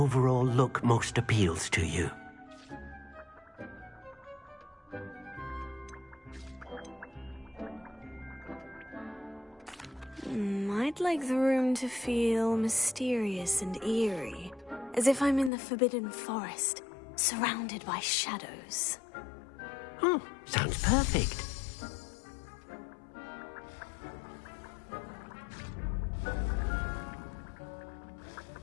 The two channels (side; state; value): right; drops out; at 15.5 s